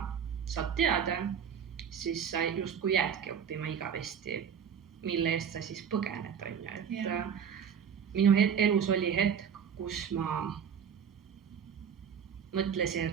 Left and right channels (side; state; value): left; quieter; 7.6 dB